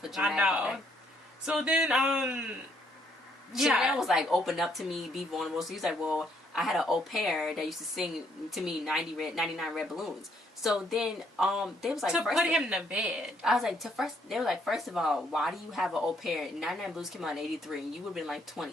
dramatic. I know. So then, Chanel was like, open up to me, be vulnerable. So he's like, well, I had an au pair that used to sing to me 99 red balloons. So then, they was like, to put him to bed. I was like, they were like, first of all, why do you have an au pair? 99 Blues came out in 83, and you would have been like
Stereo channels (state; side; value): normal; both; correlation 0.69